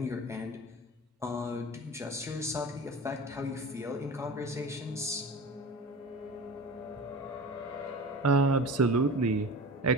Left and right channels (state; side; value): normal; both; correlation 0.34